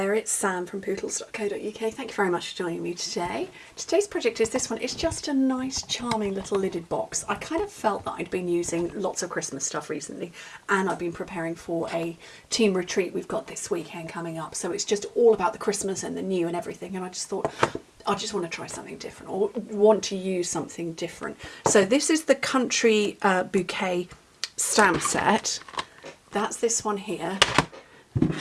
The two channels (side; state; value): both; identical; correlation 1.00